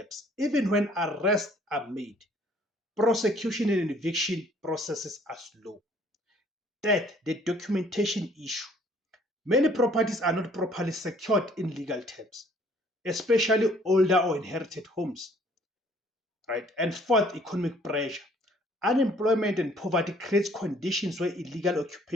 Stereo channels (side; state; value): both; normal; correlation 0.59